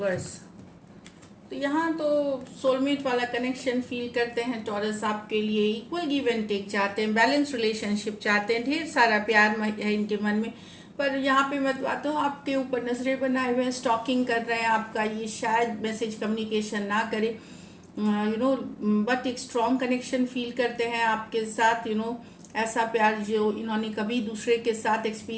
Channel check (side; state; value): both; identical; correlation 1.00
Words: तो यहाँ तो सोलमेट वाला कनेक्शन फील करते हैं टॉरस आपके लिए। इक्वल गिव एंड टेक चाहते हैं, बैलेंस रिलेशनशिप चाहते हैं, ढेर सारा प्यार है इनके मन में। पर यहाँ पे मैं बात हूँ, आपके ऊपर नजरें बनाए हुए हैं, स्टॉकिंग कर रहे हैं आपका। ये शायद मैसेज कम्युनिकेशन ना करे, बट एक स्ट्रॉन्ग कनेक्शन फील करते हैं आपके साथ। ऐसा प्यार जो इन्होंने कभी दूसरे के साथ